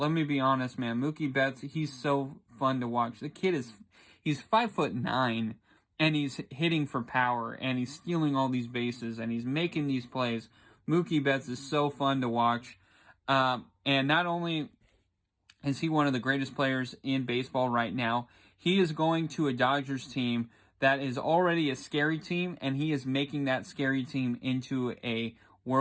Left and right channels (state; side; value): identical; both; correlation 1.00